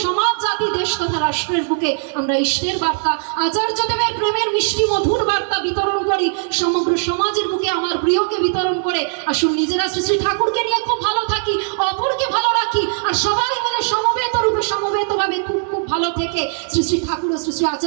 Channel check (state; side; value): silent; left; digital silence